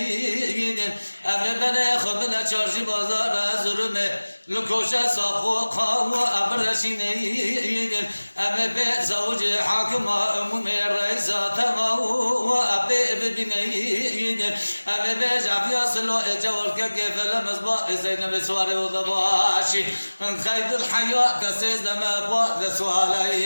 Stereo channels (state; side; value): inverted; both; correlation -1.00